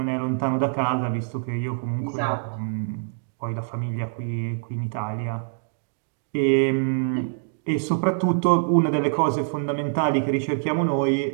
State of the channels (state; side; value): silent; left; digital silence